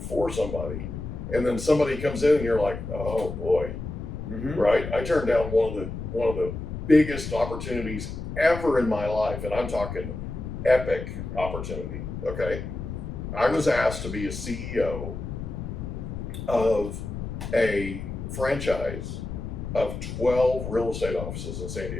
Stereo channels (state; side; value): noise; left; rumble, 7 dB below the sound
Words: somebody, and then somebody comes in and you're like, oh boy, right? I turned down one of the biggest opportunities ever in my life, and I'm talking epic opportunity. Okay, I was asked to be a CEO of a franchise of 12 real estate offices in San